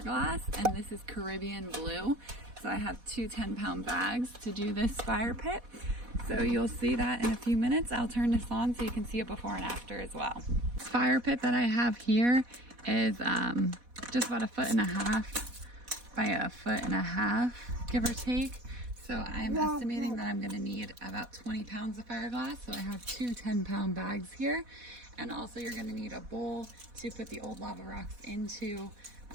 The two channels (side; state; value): left; late; 4.1 ms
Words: And this is Caribbean blue. So I have two 10-pound bags to do this fire pit. So you'll see that in a few minutes. I'll turn this on so you can see it before and after as well. This fire pit that I have here is just about 1.5 feet by 1.5 feet, give or take. So I'm estimating that I'm gonna need about 20 pounds of fiberglass. So I have two 10-pound bags here. And also you're gonna need a bowl to put the old lava rocks into,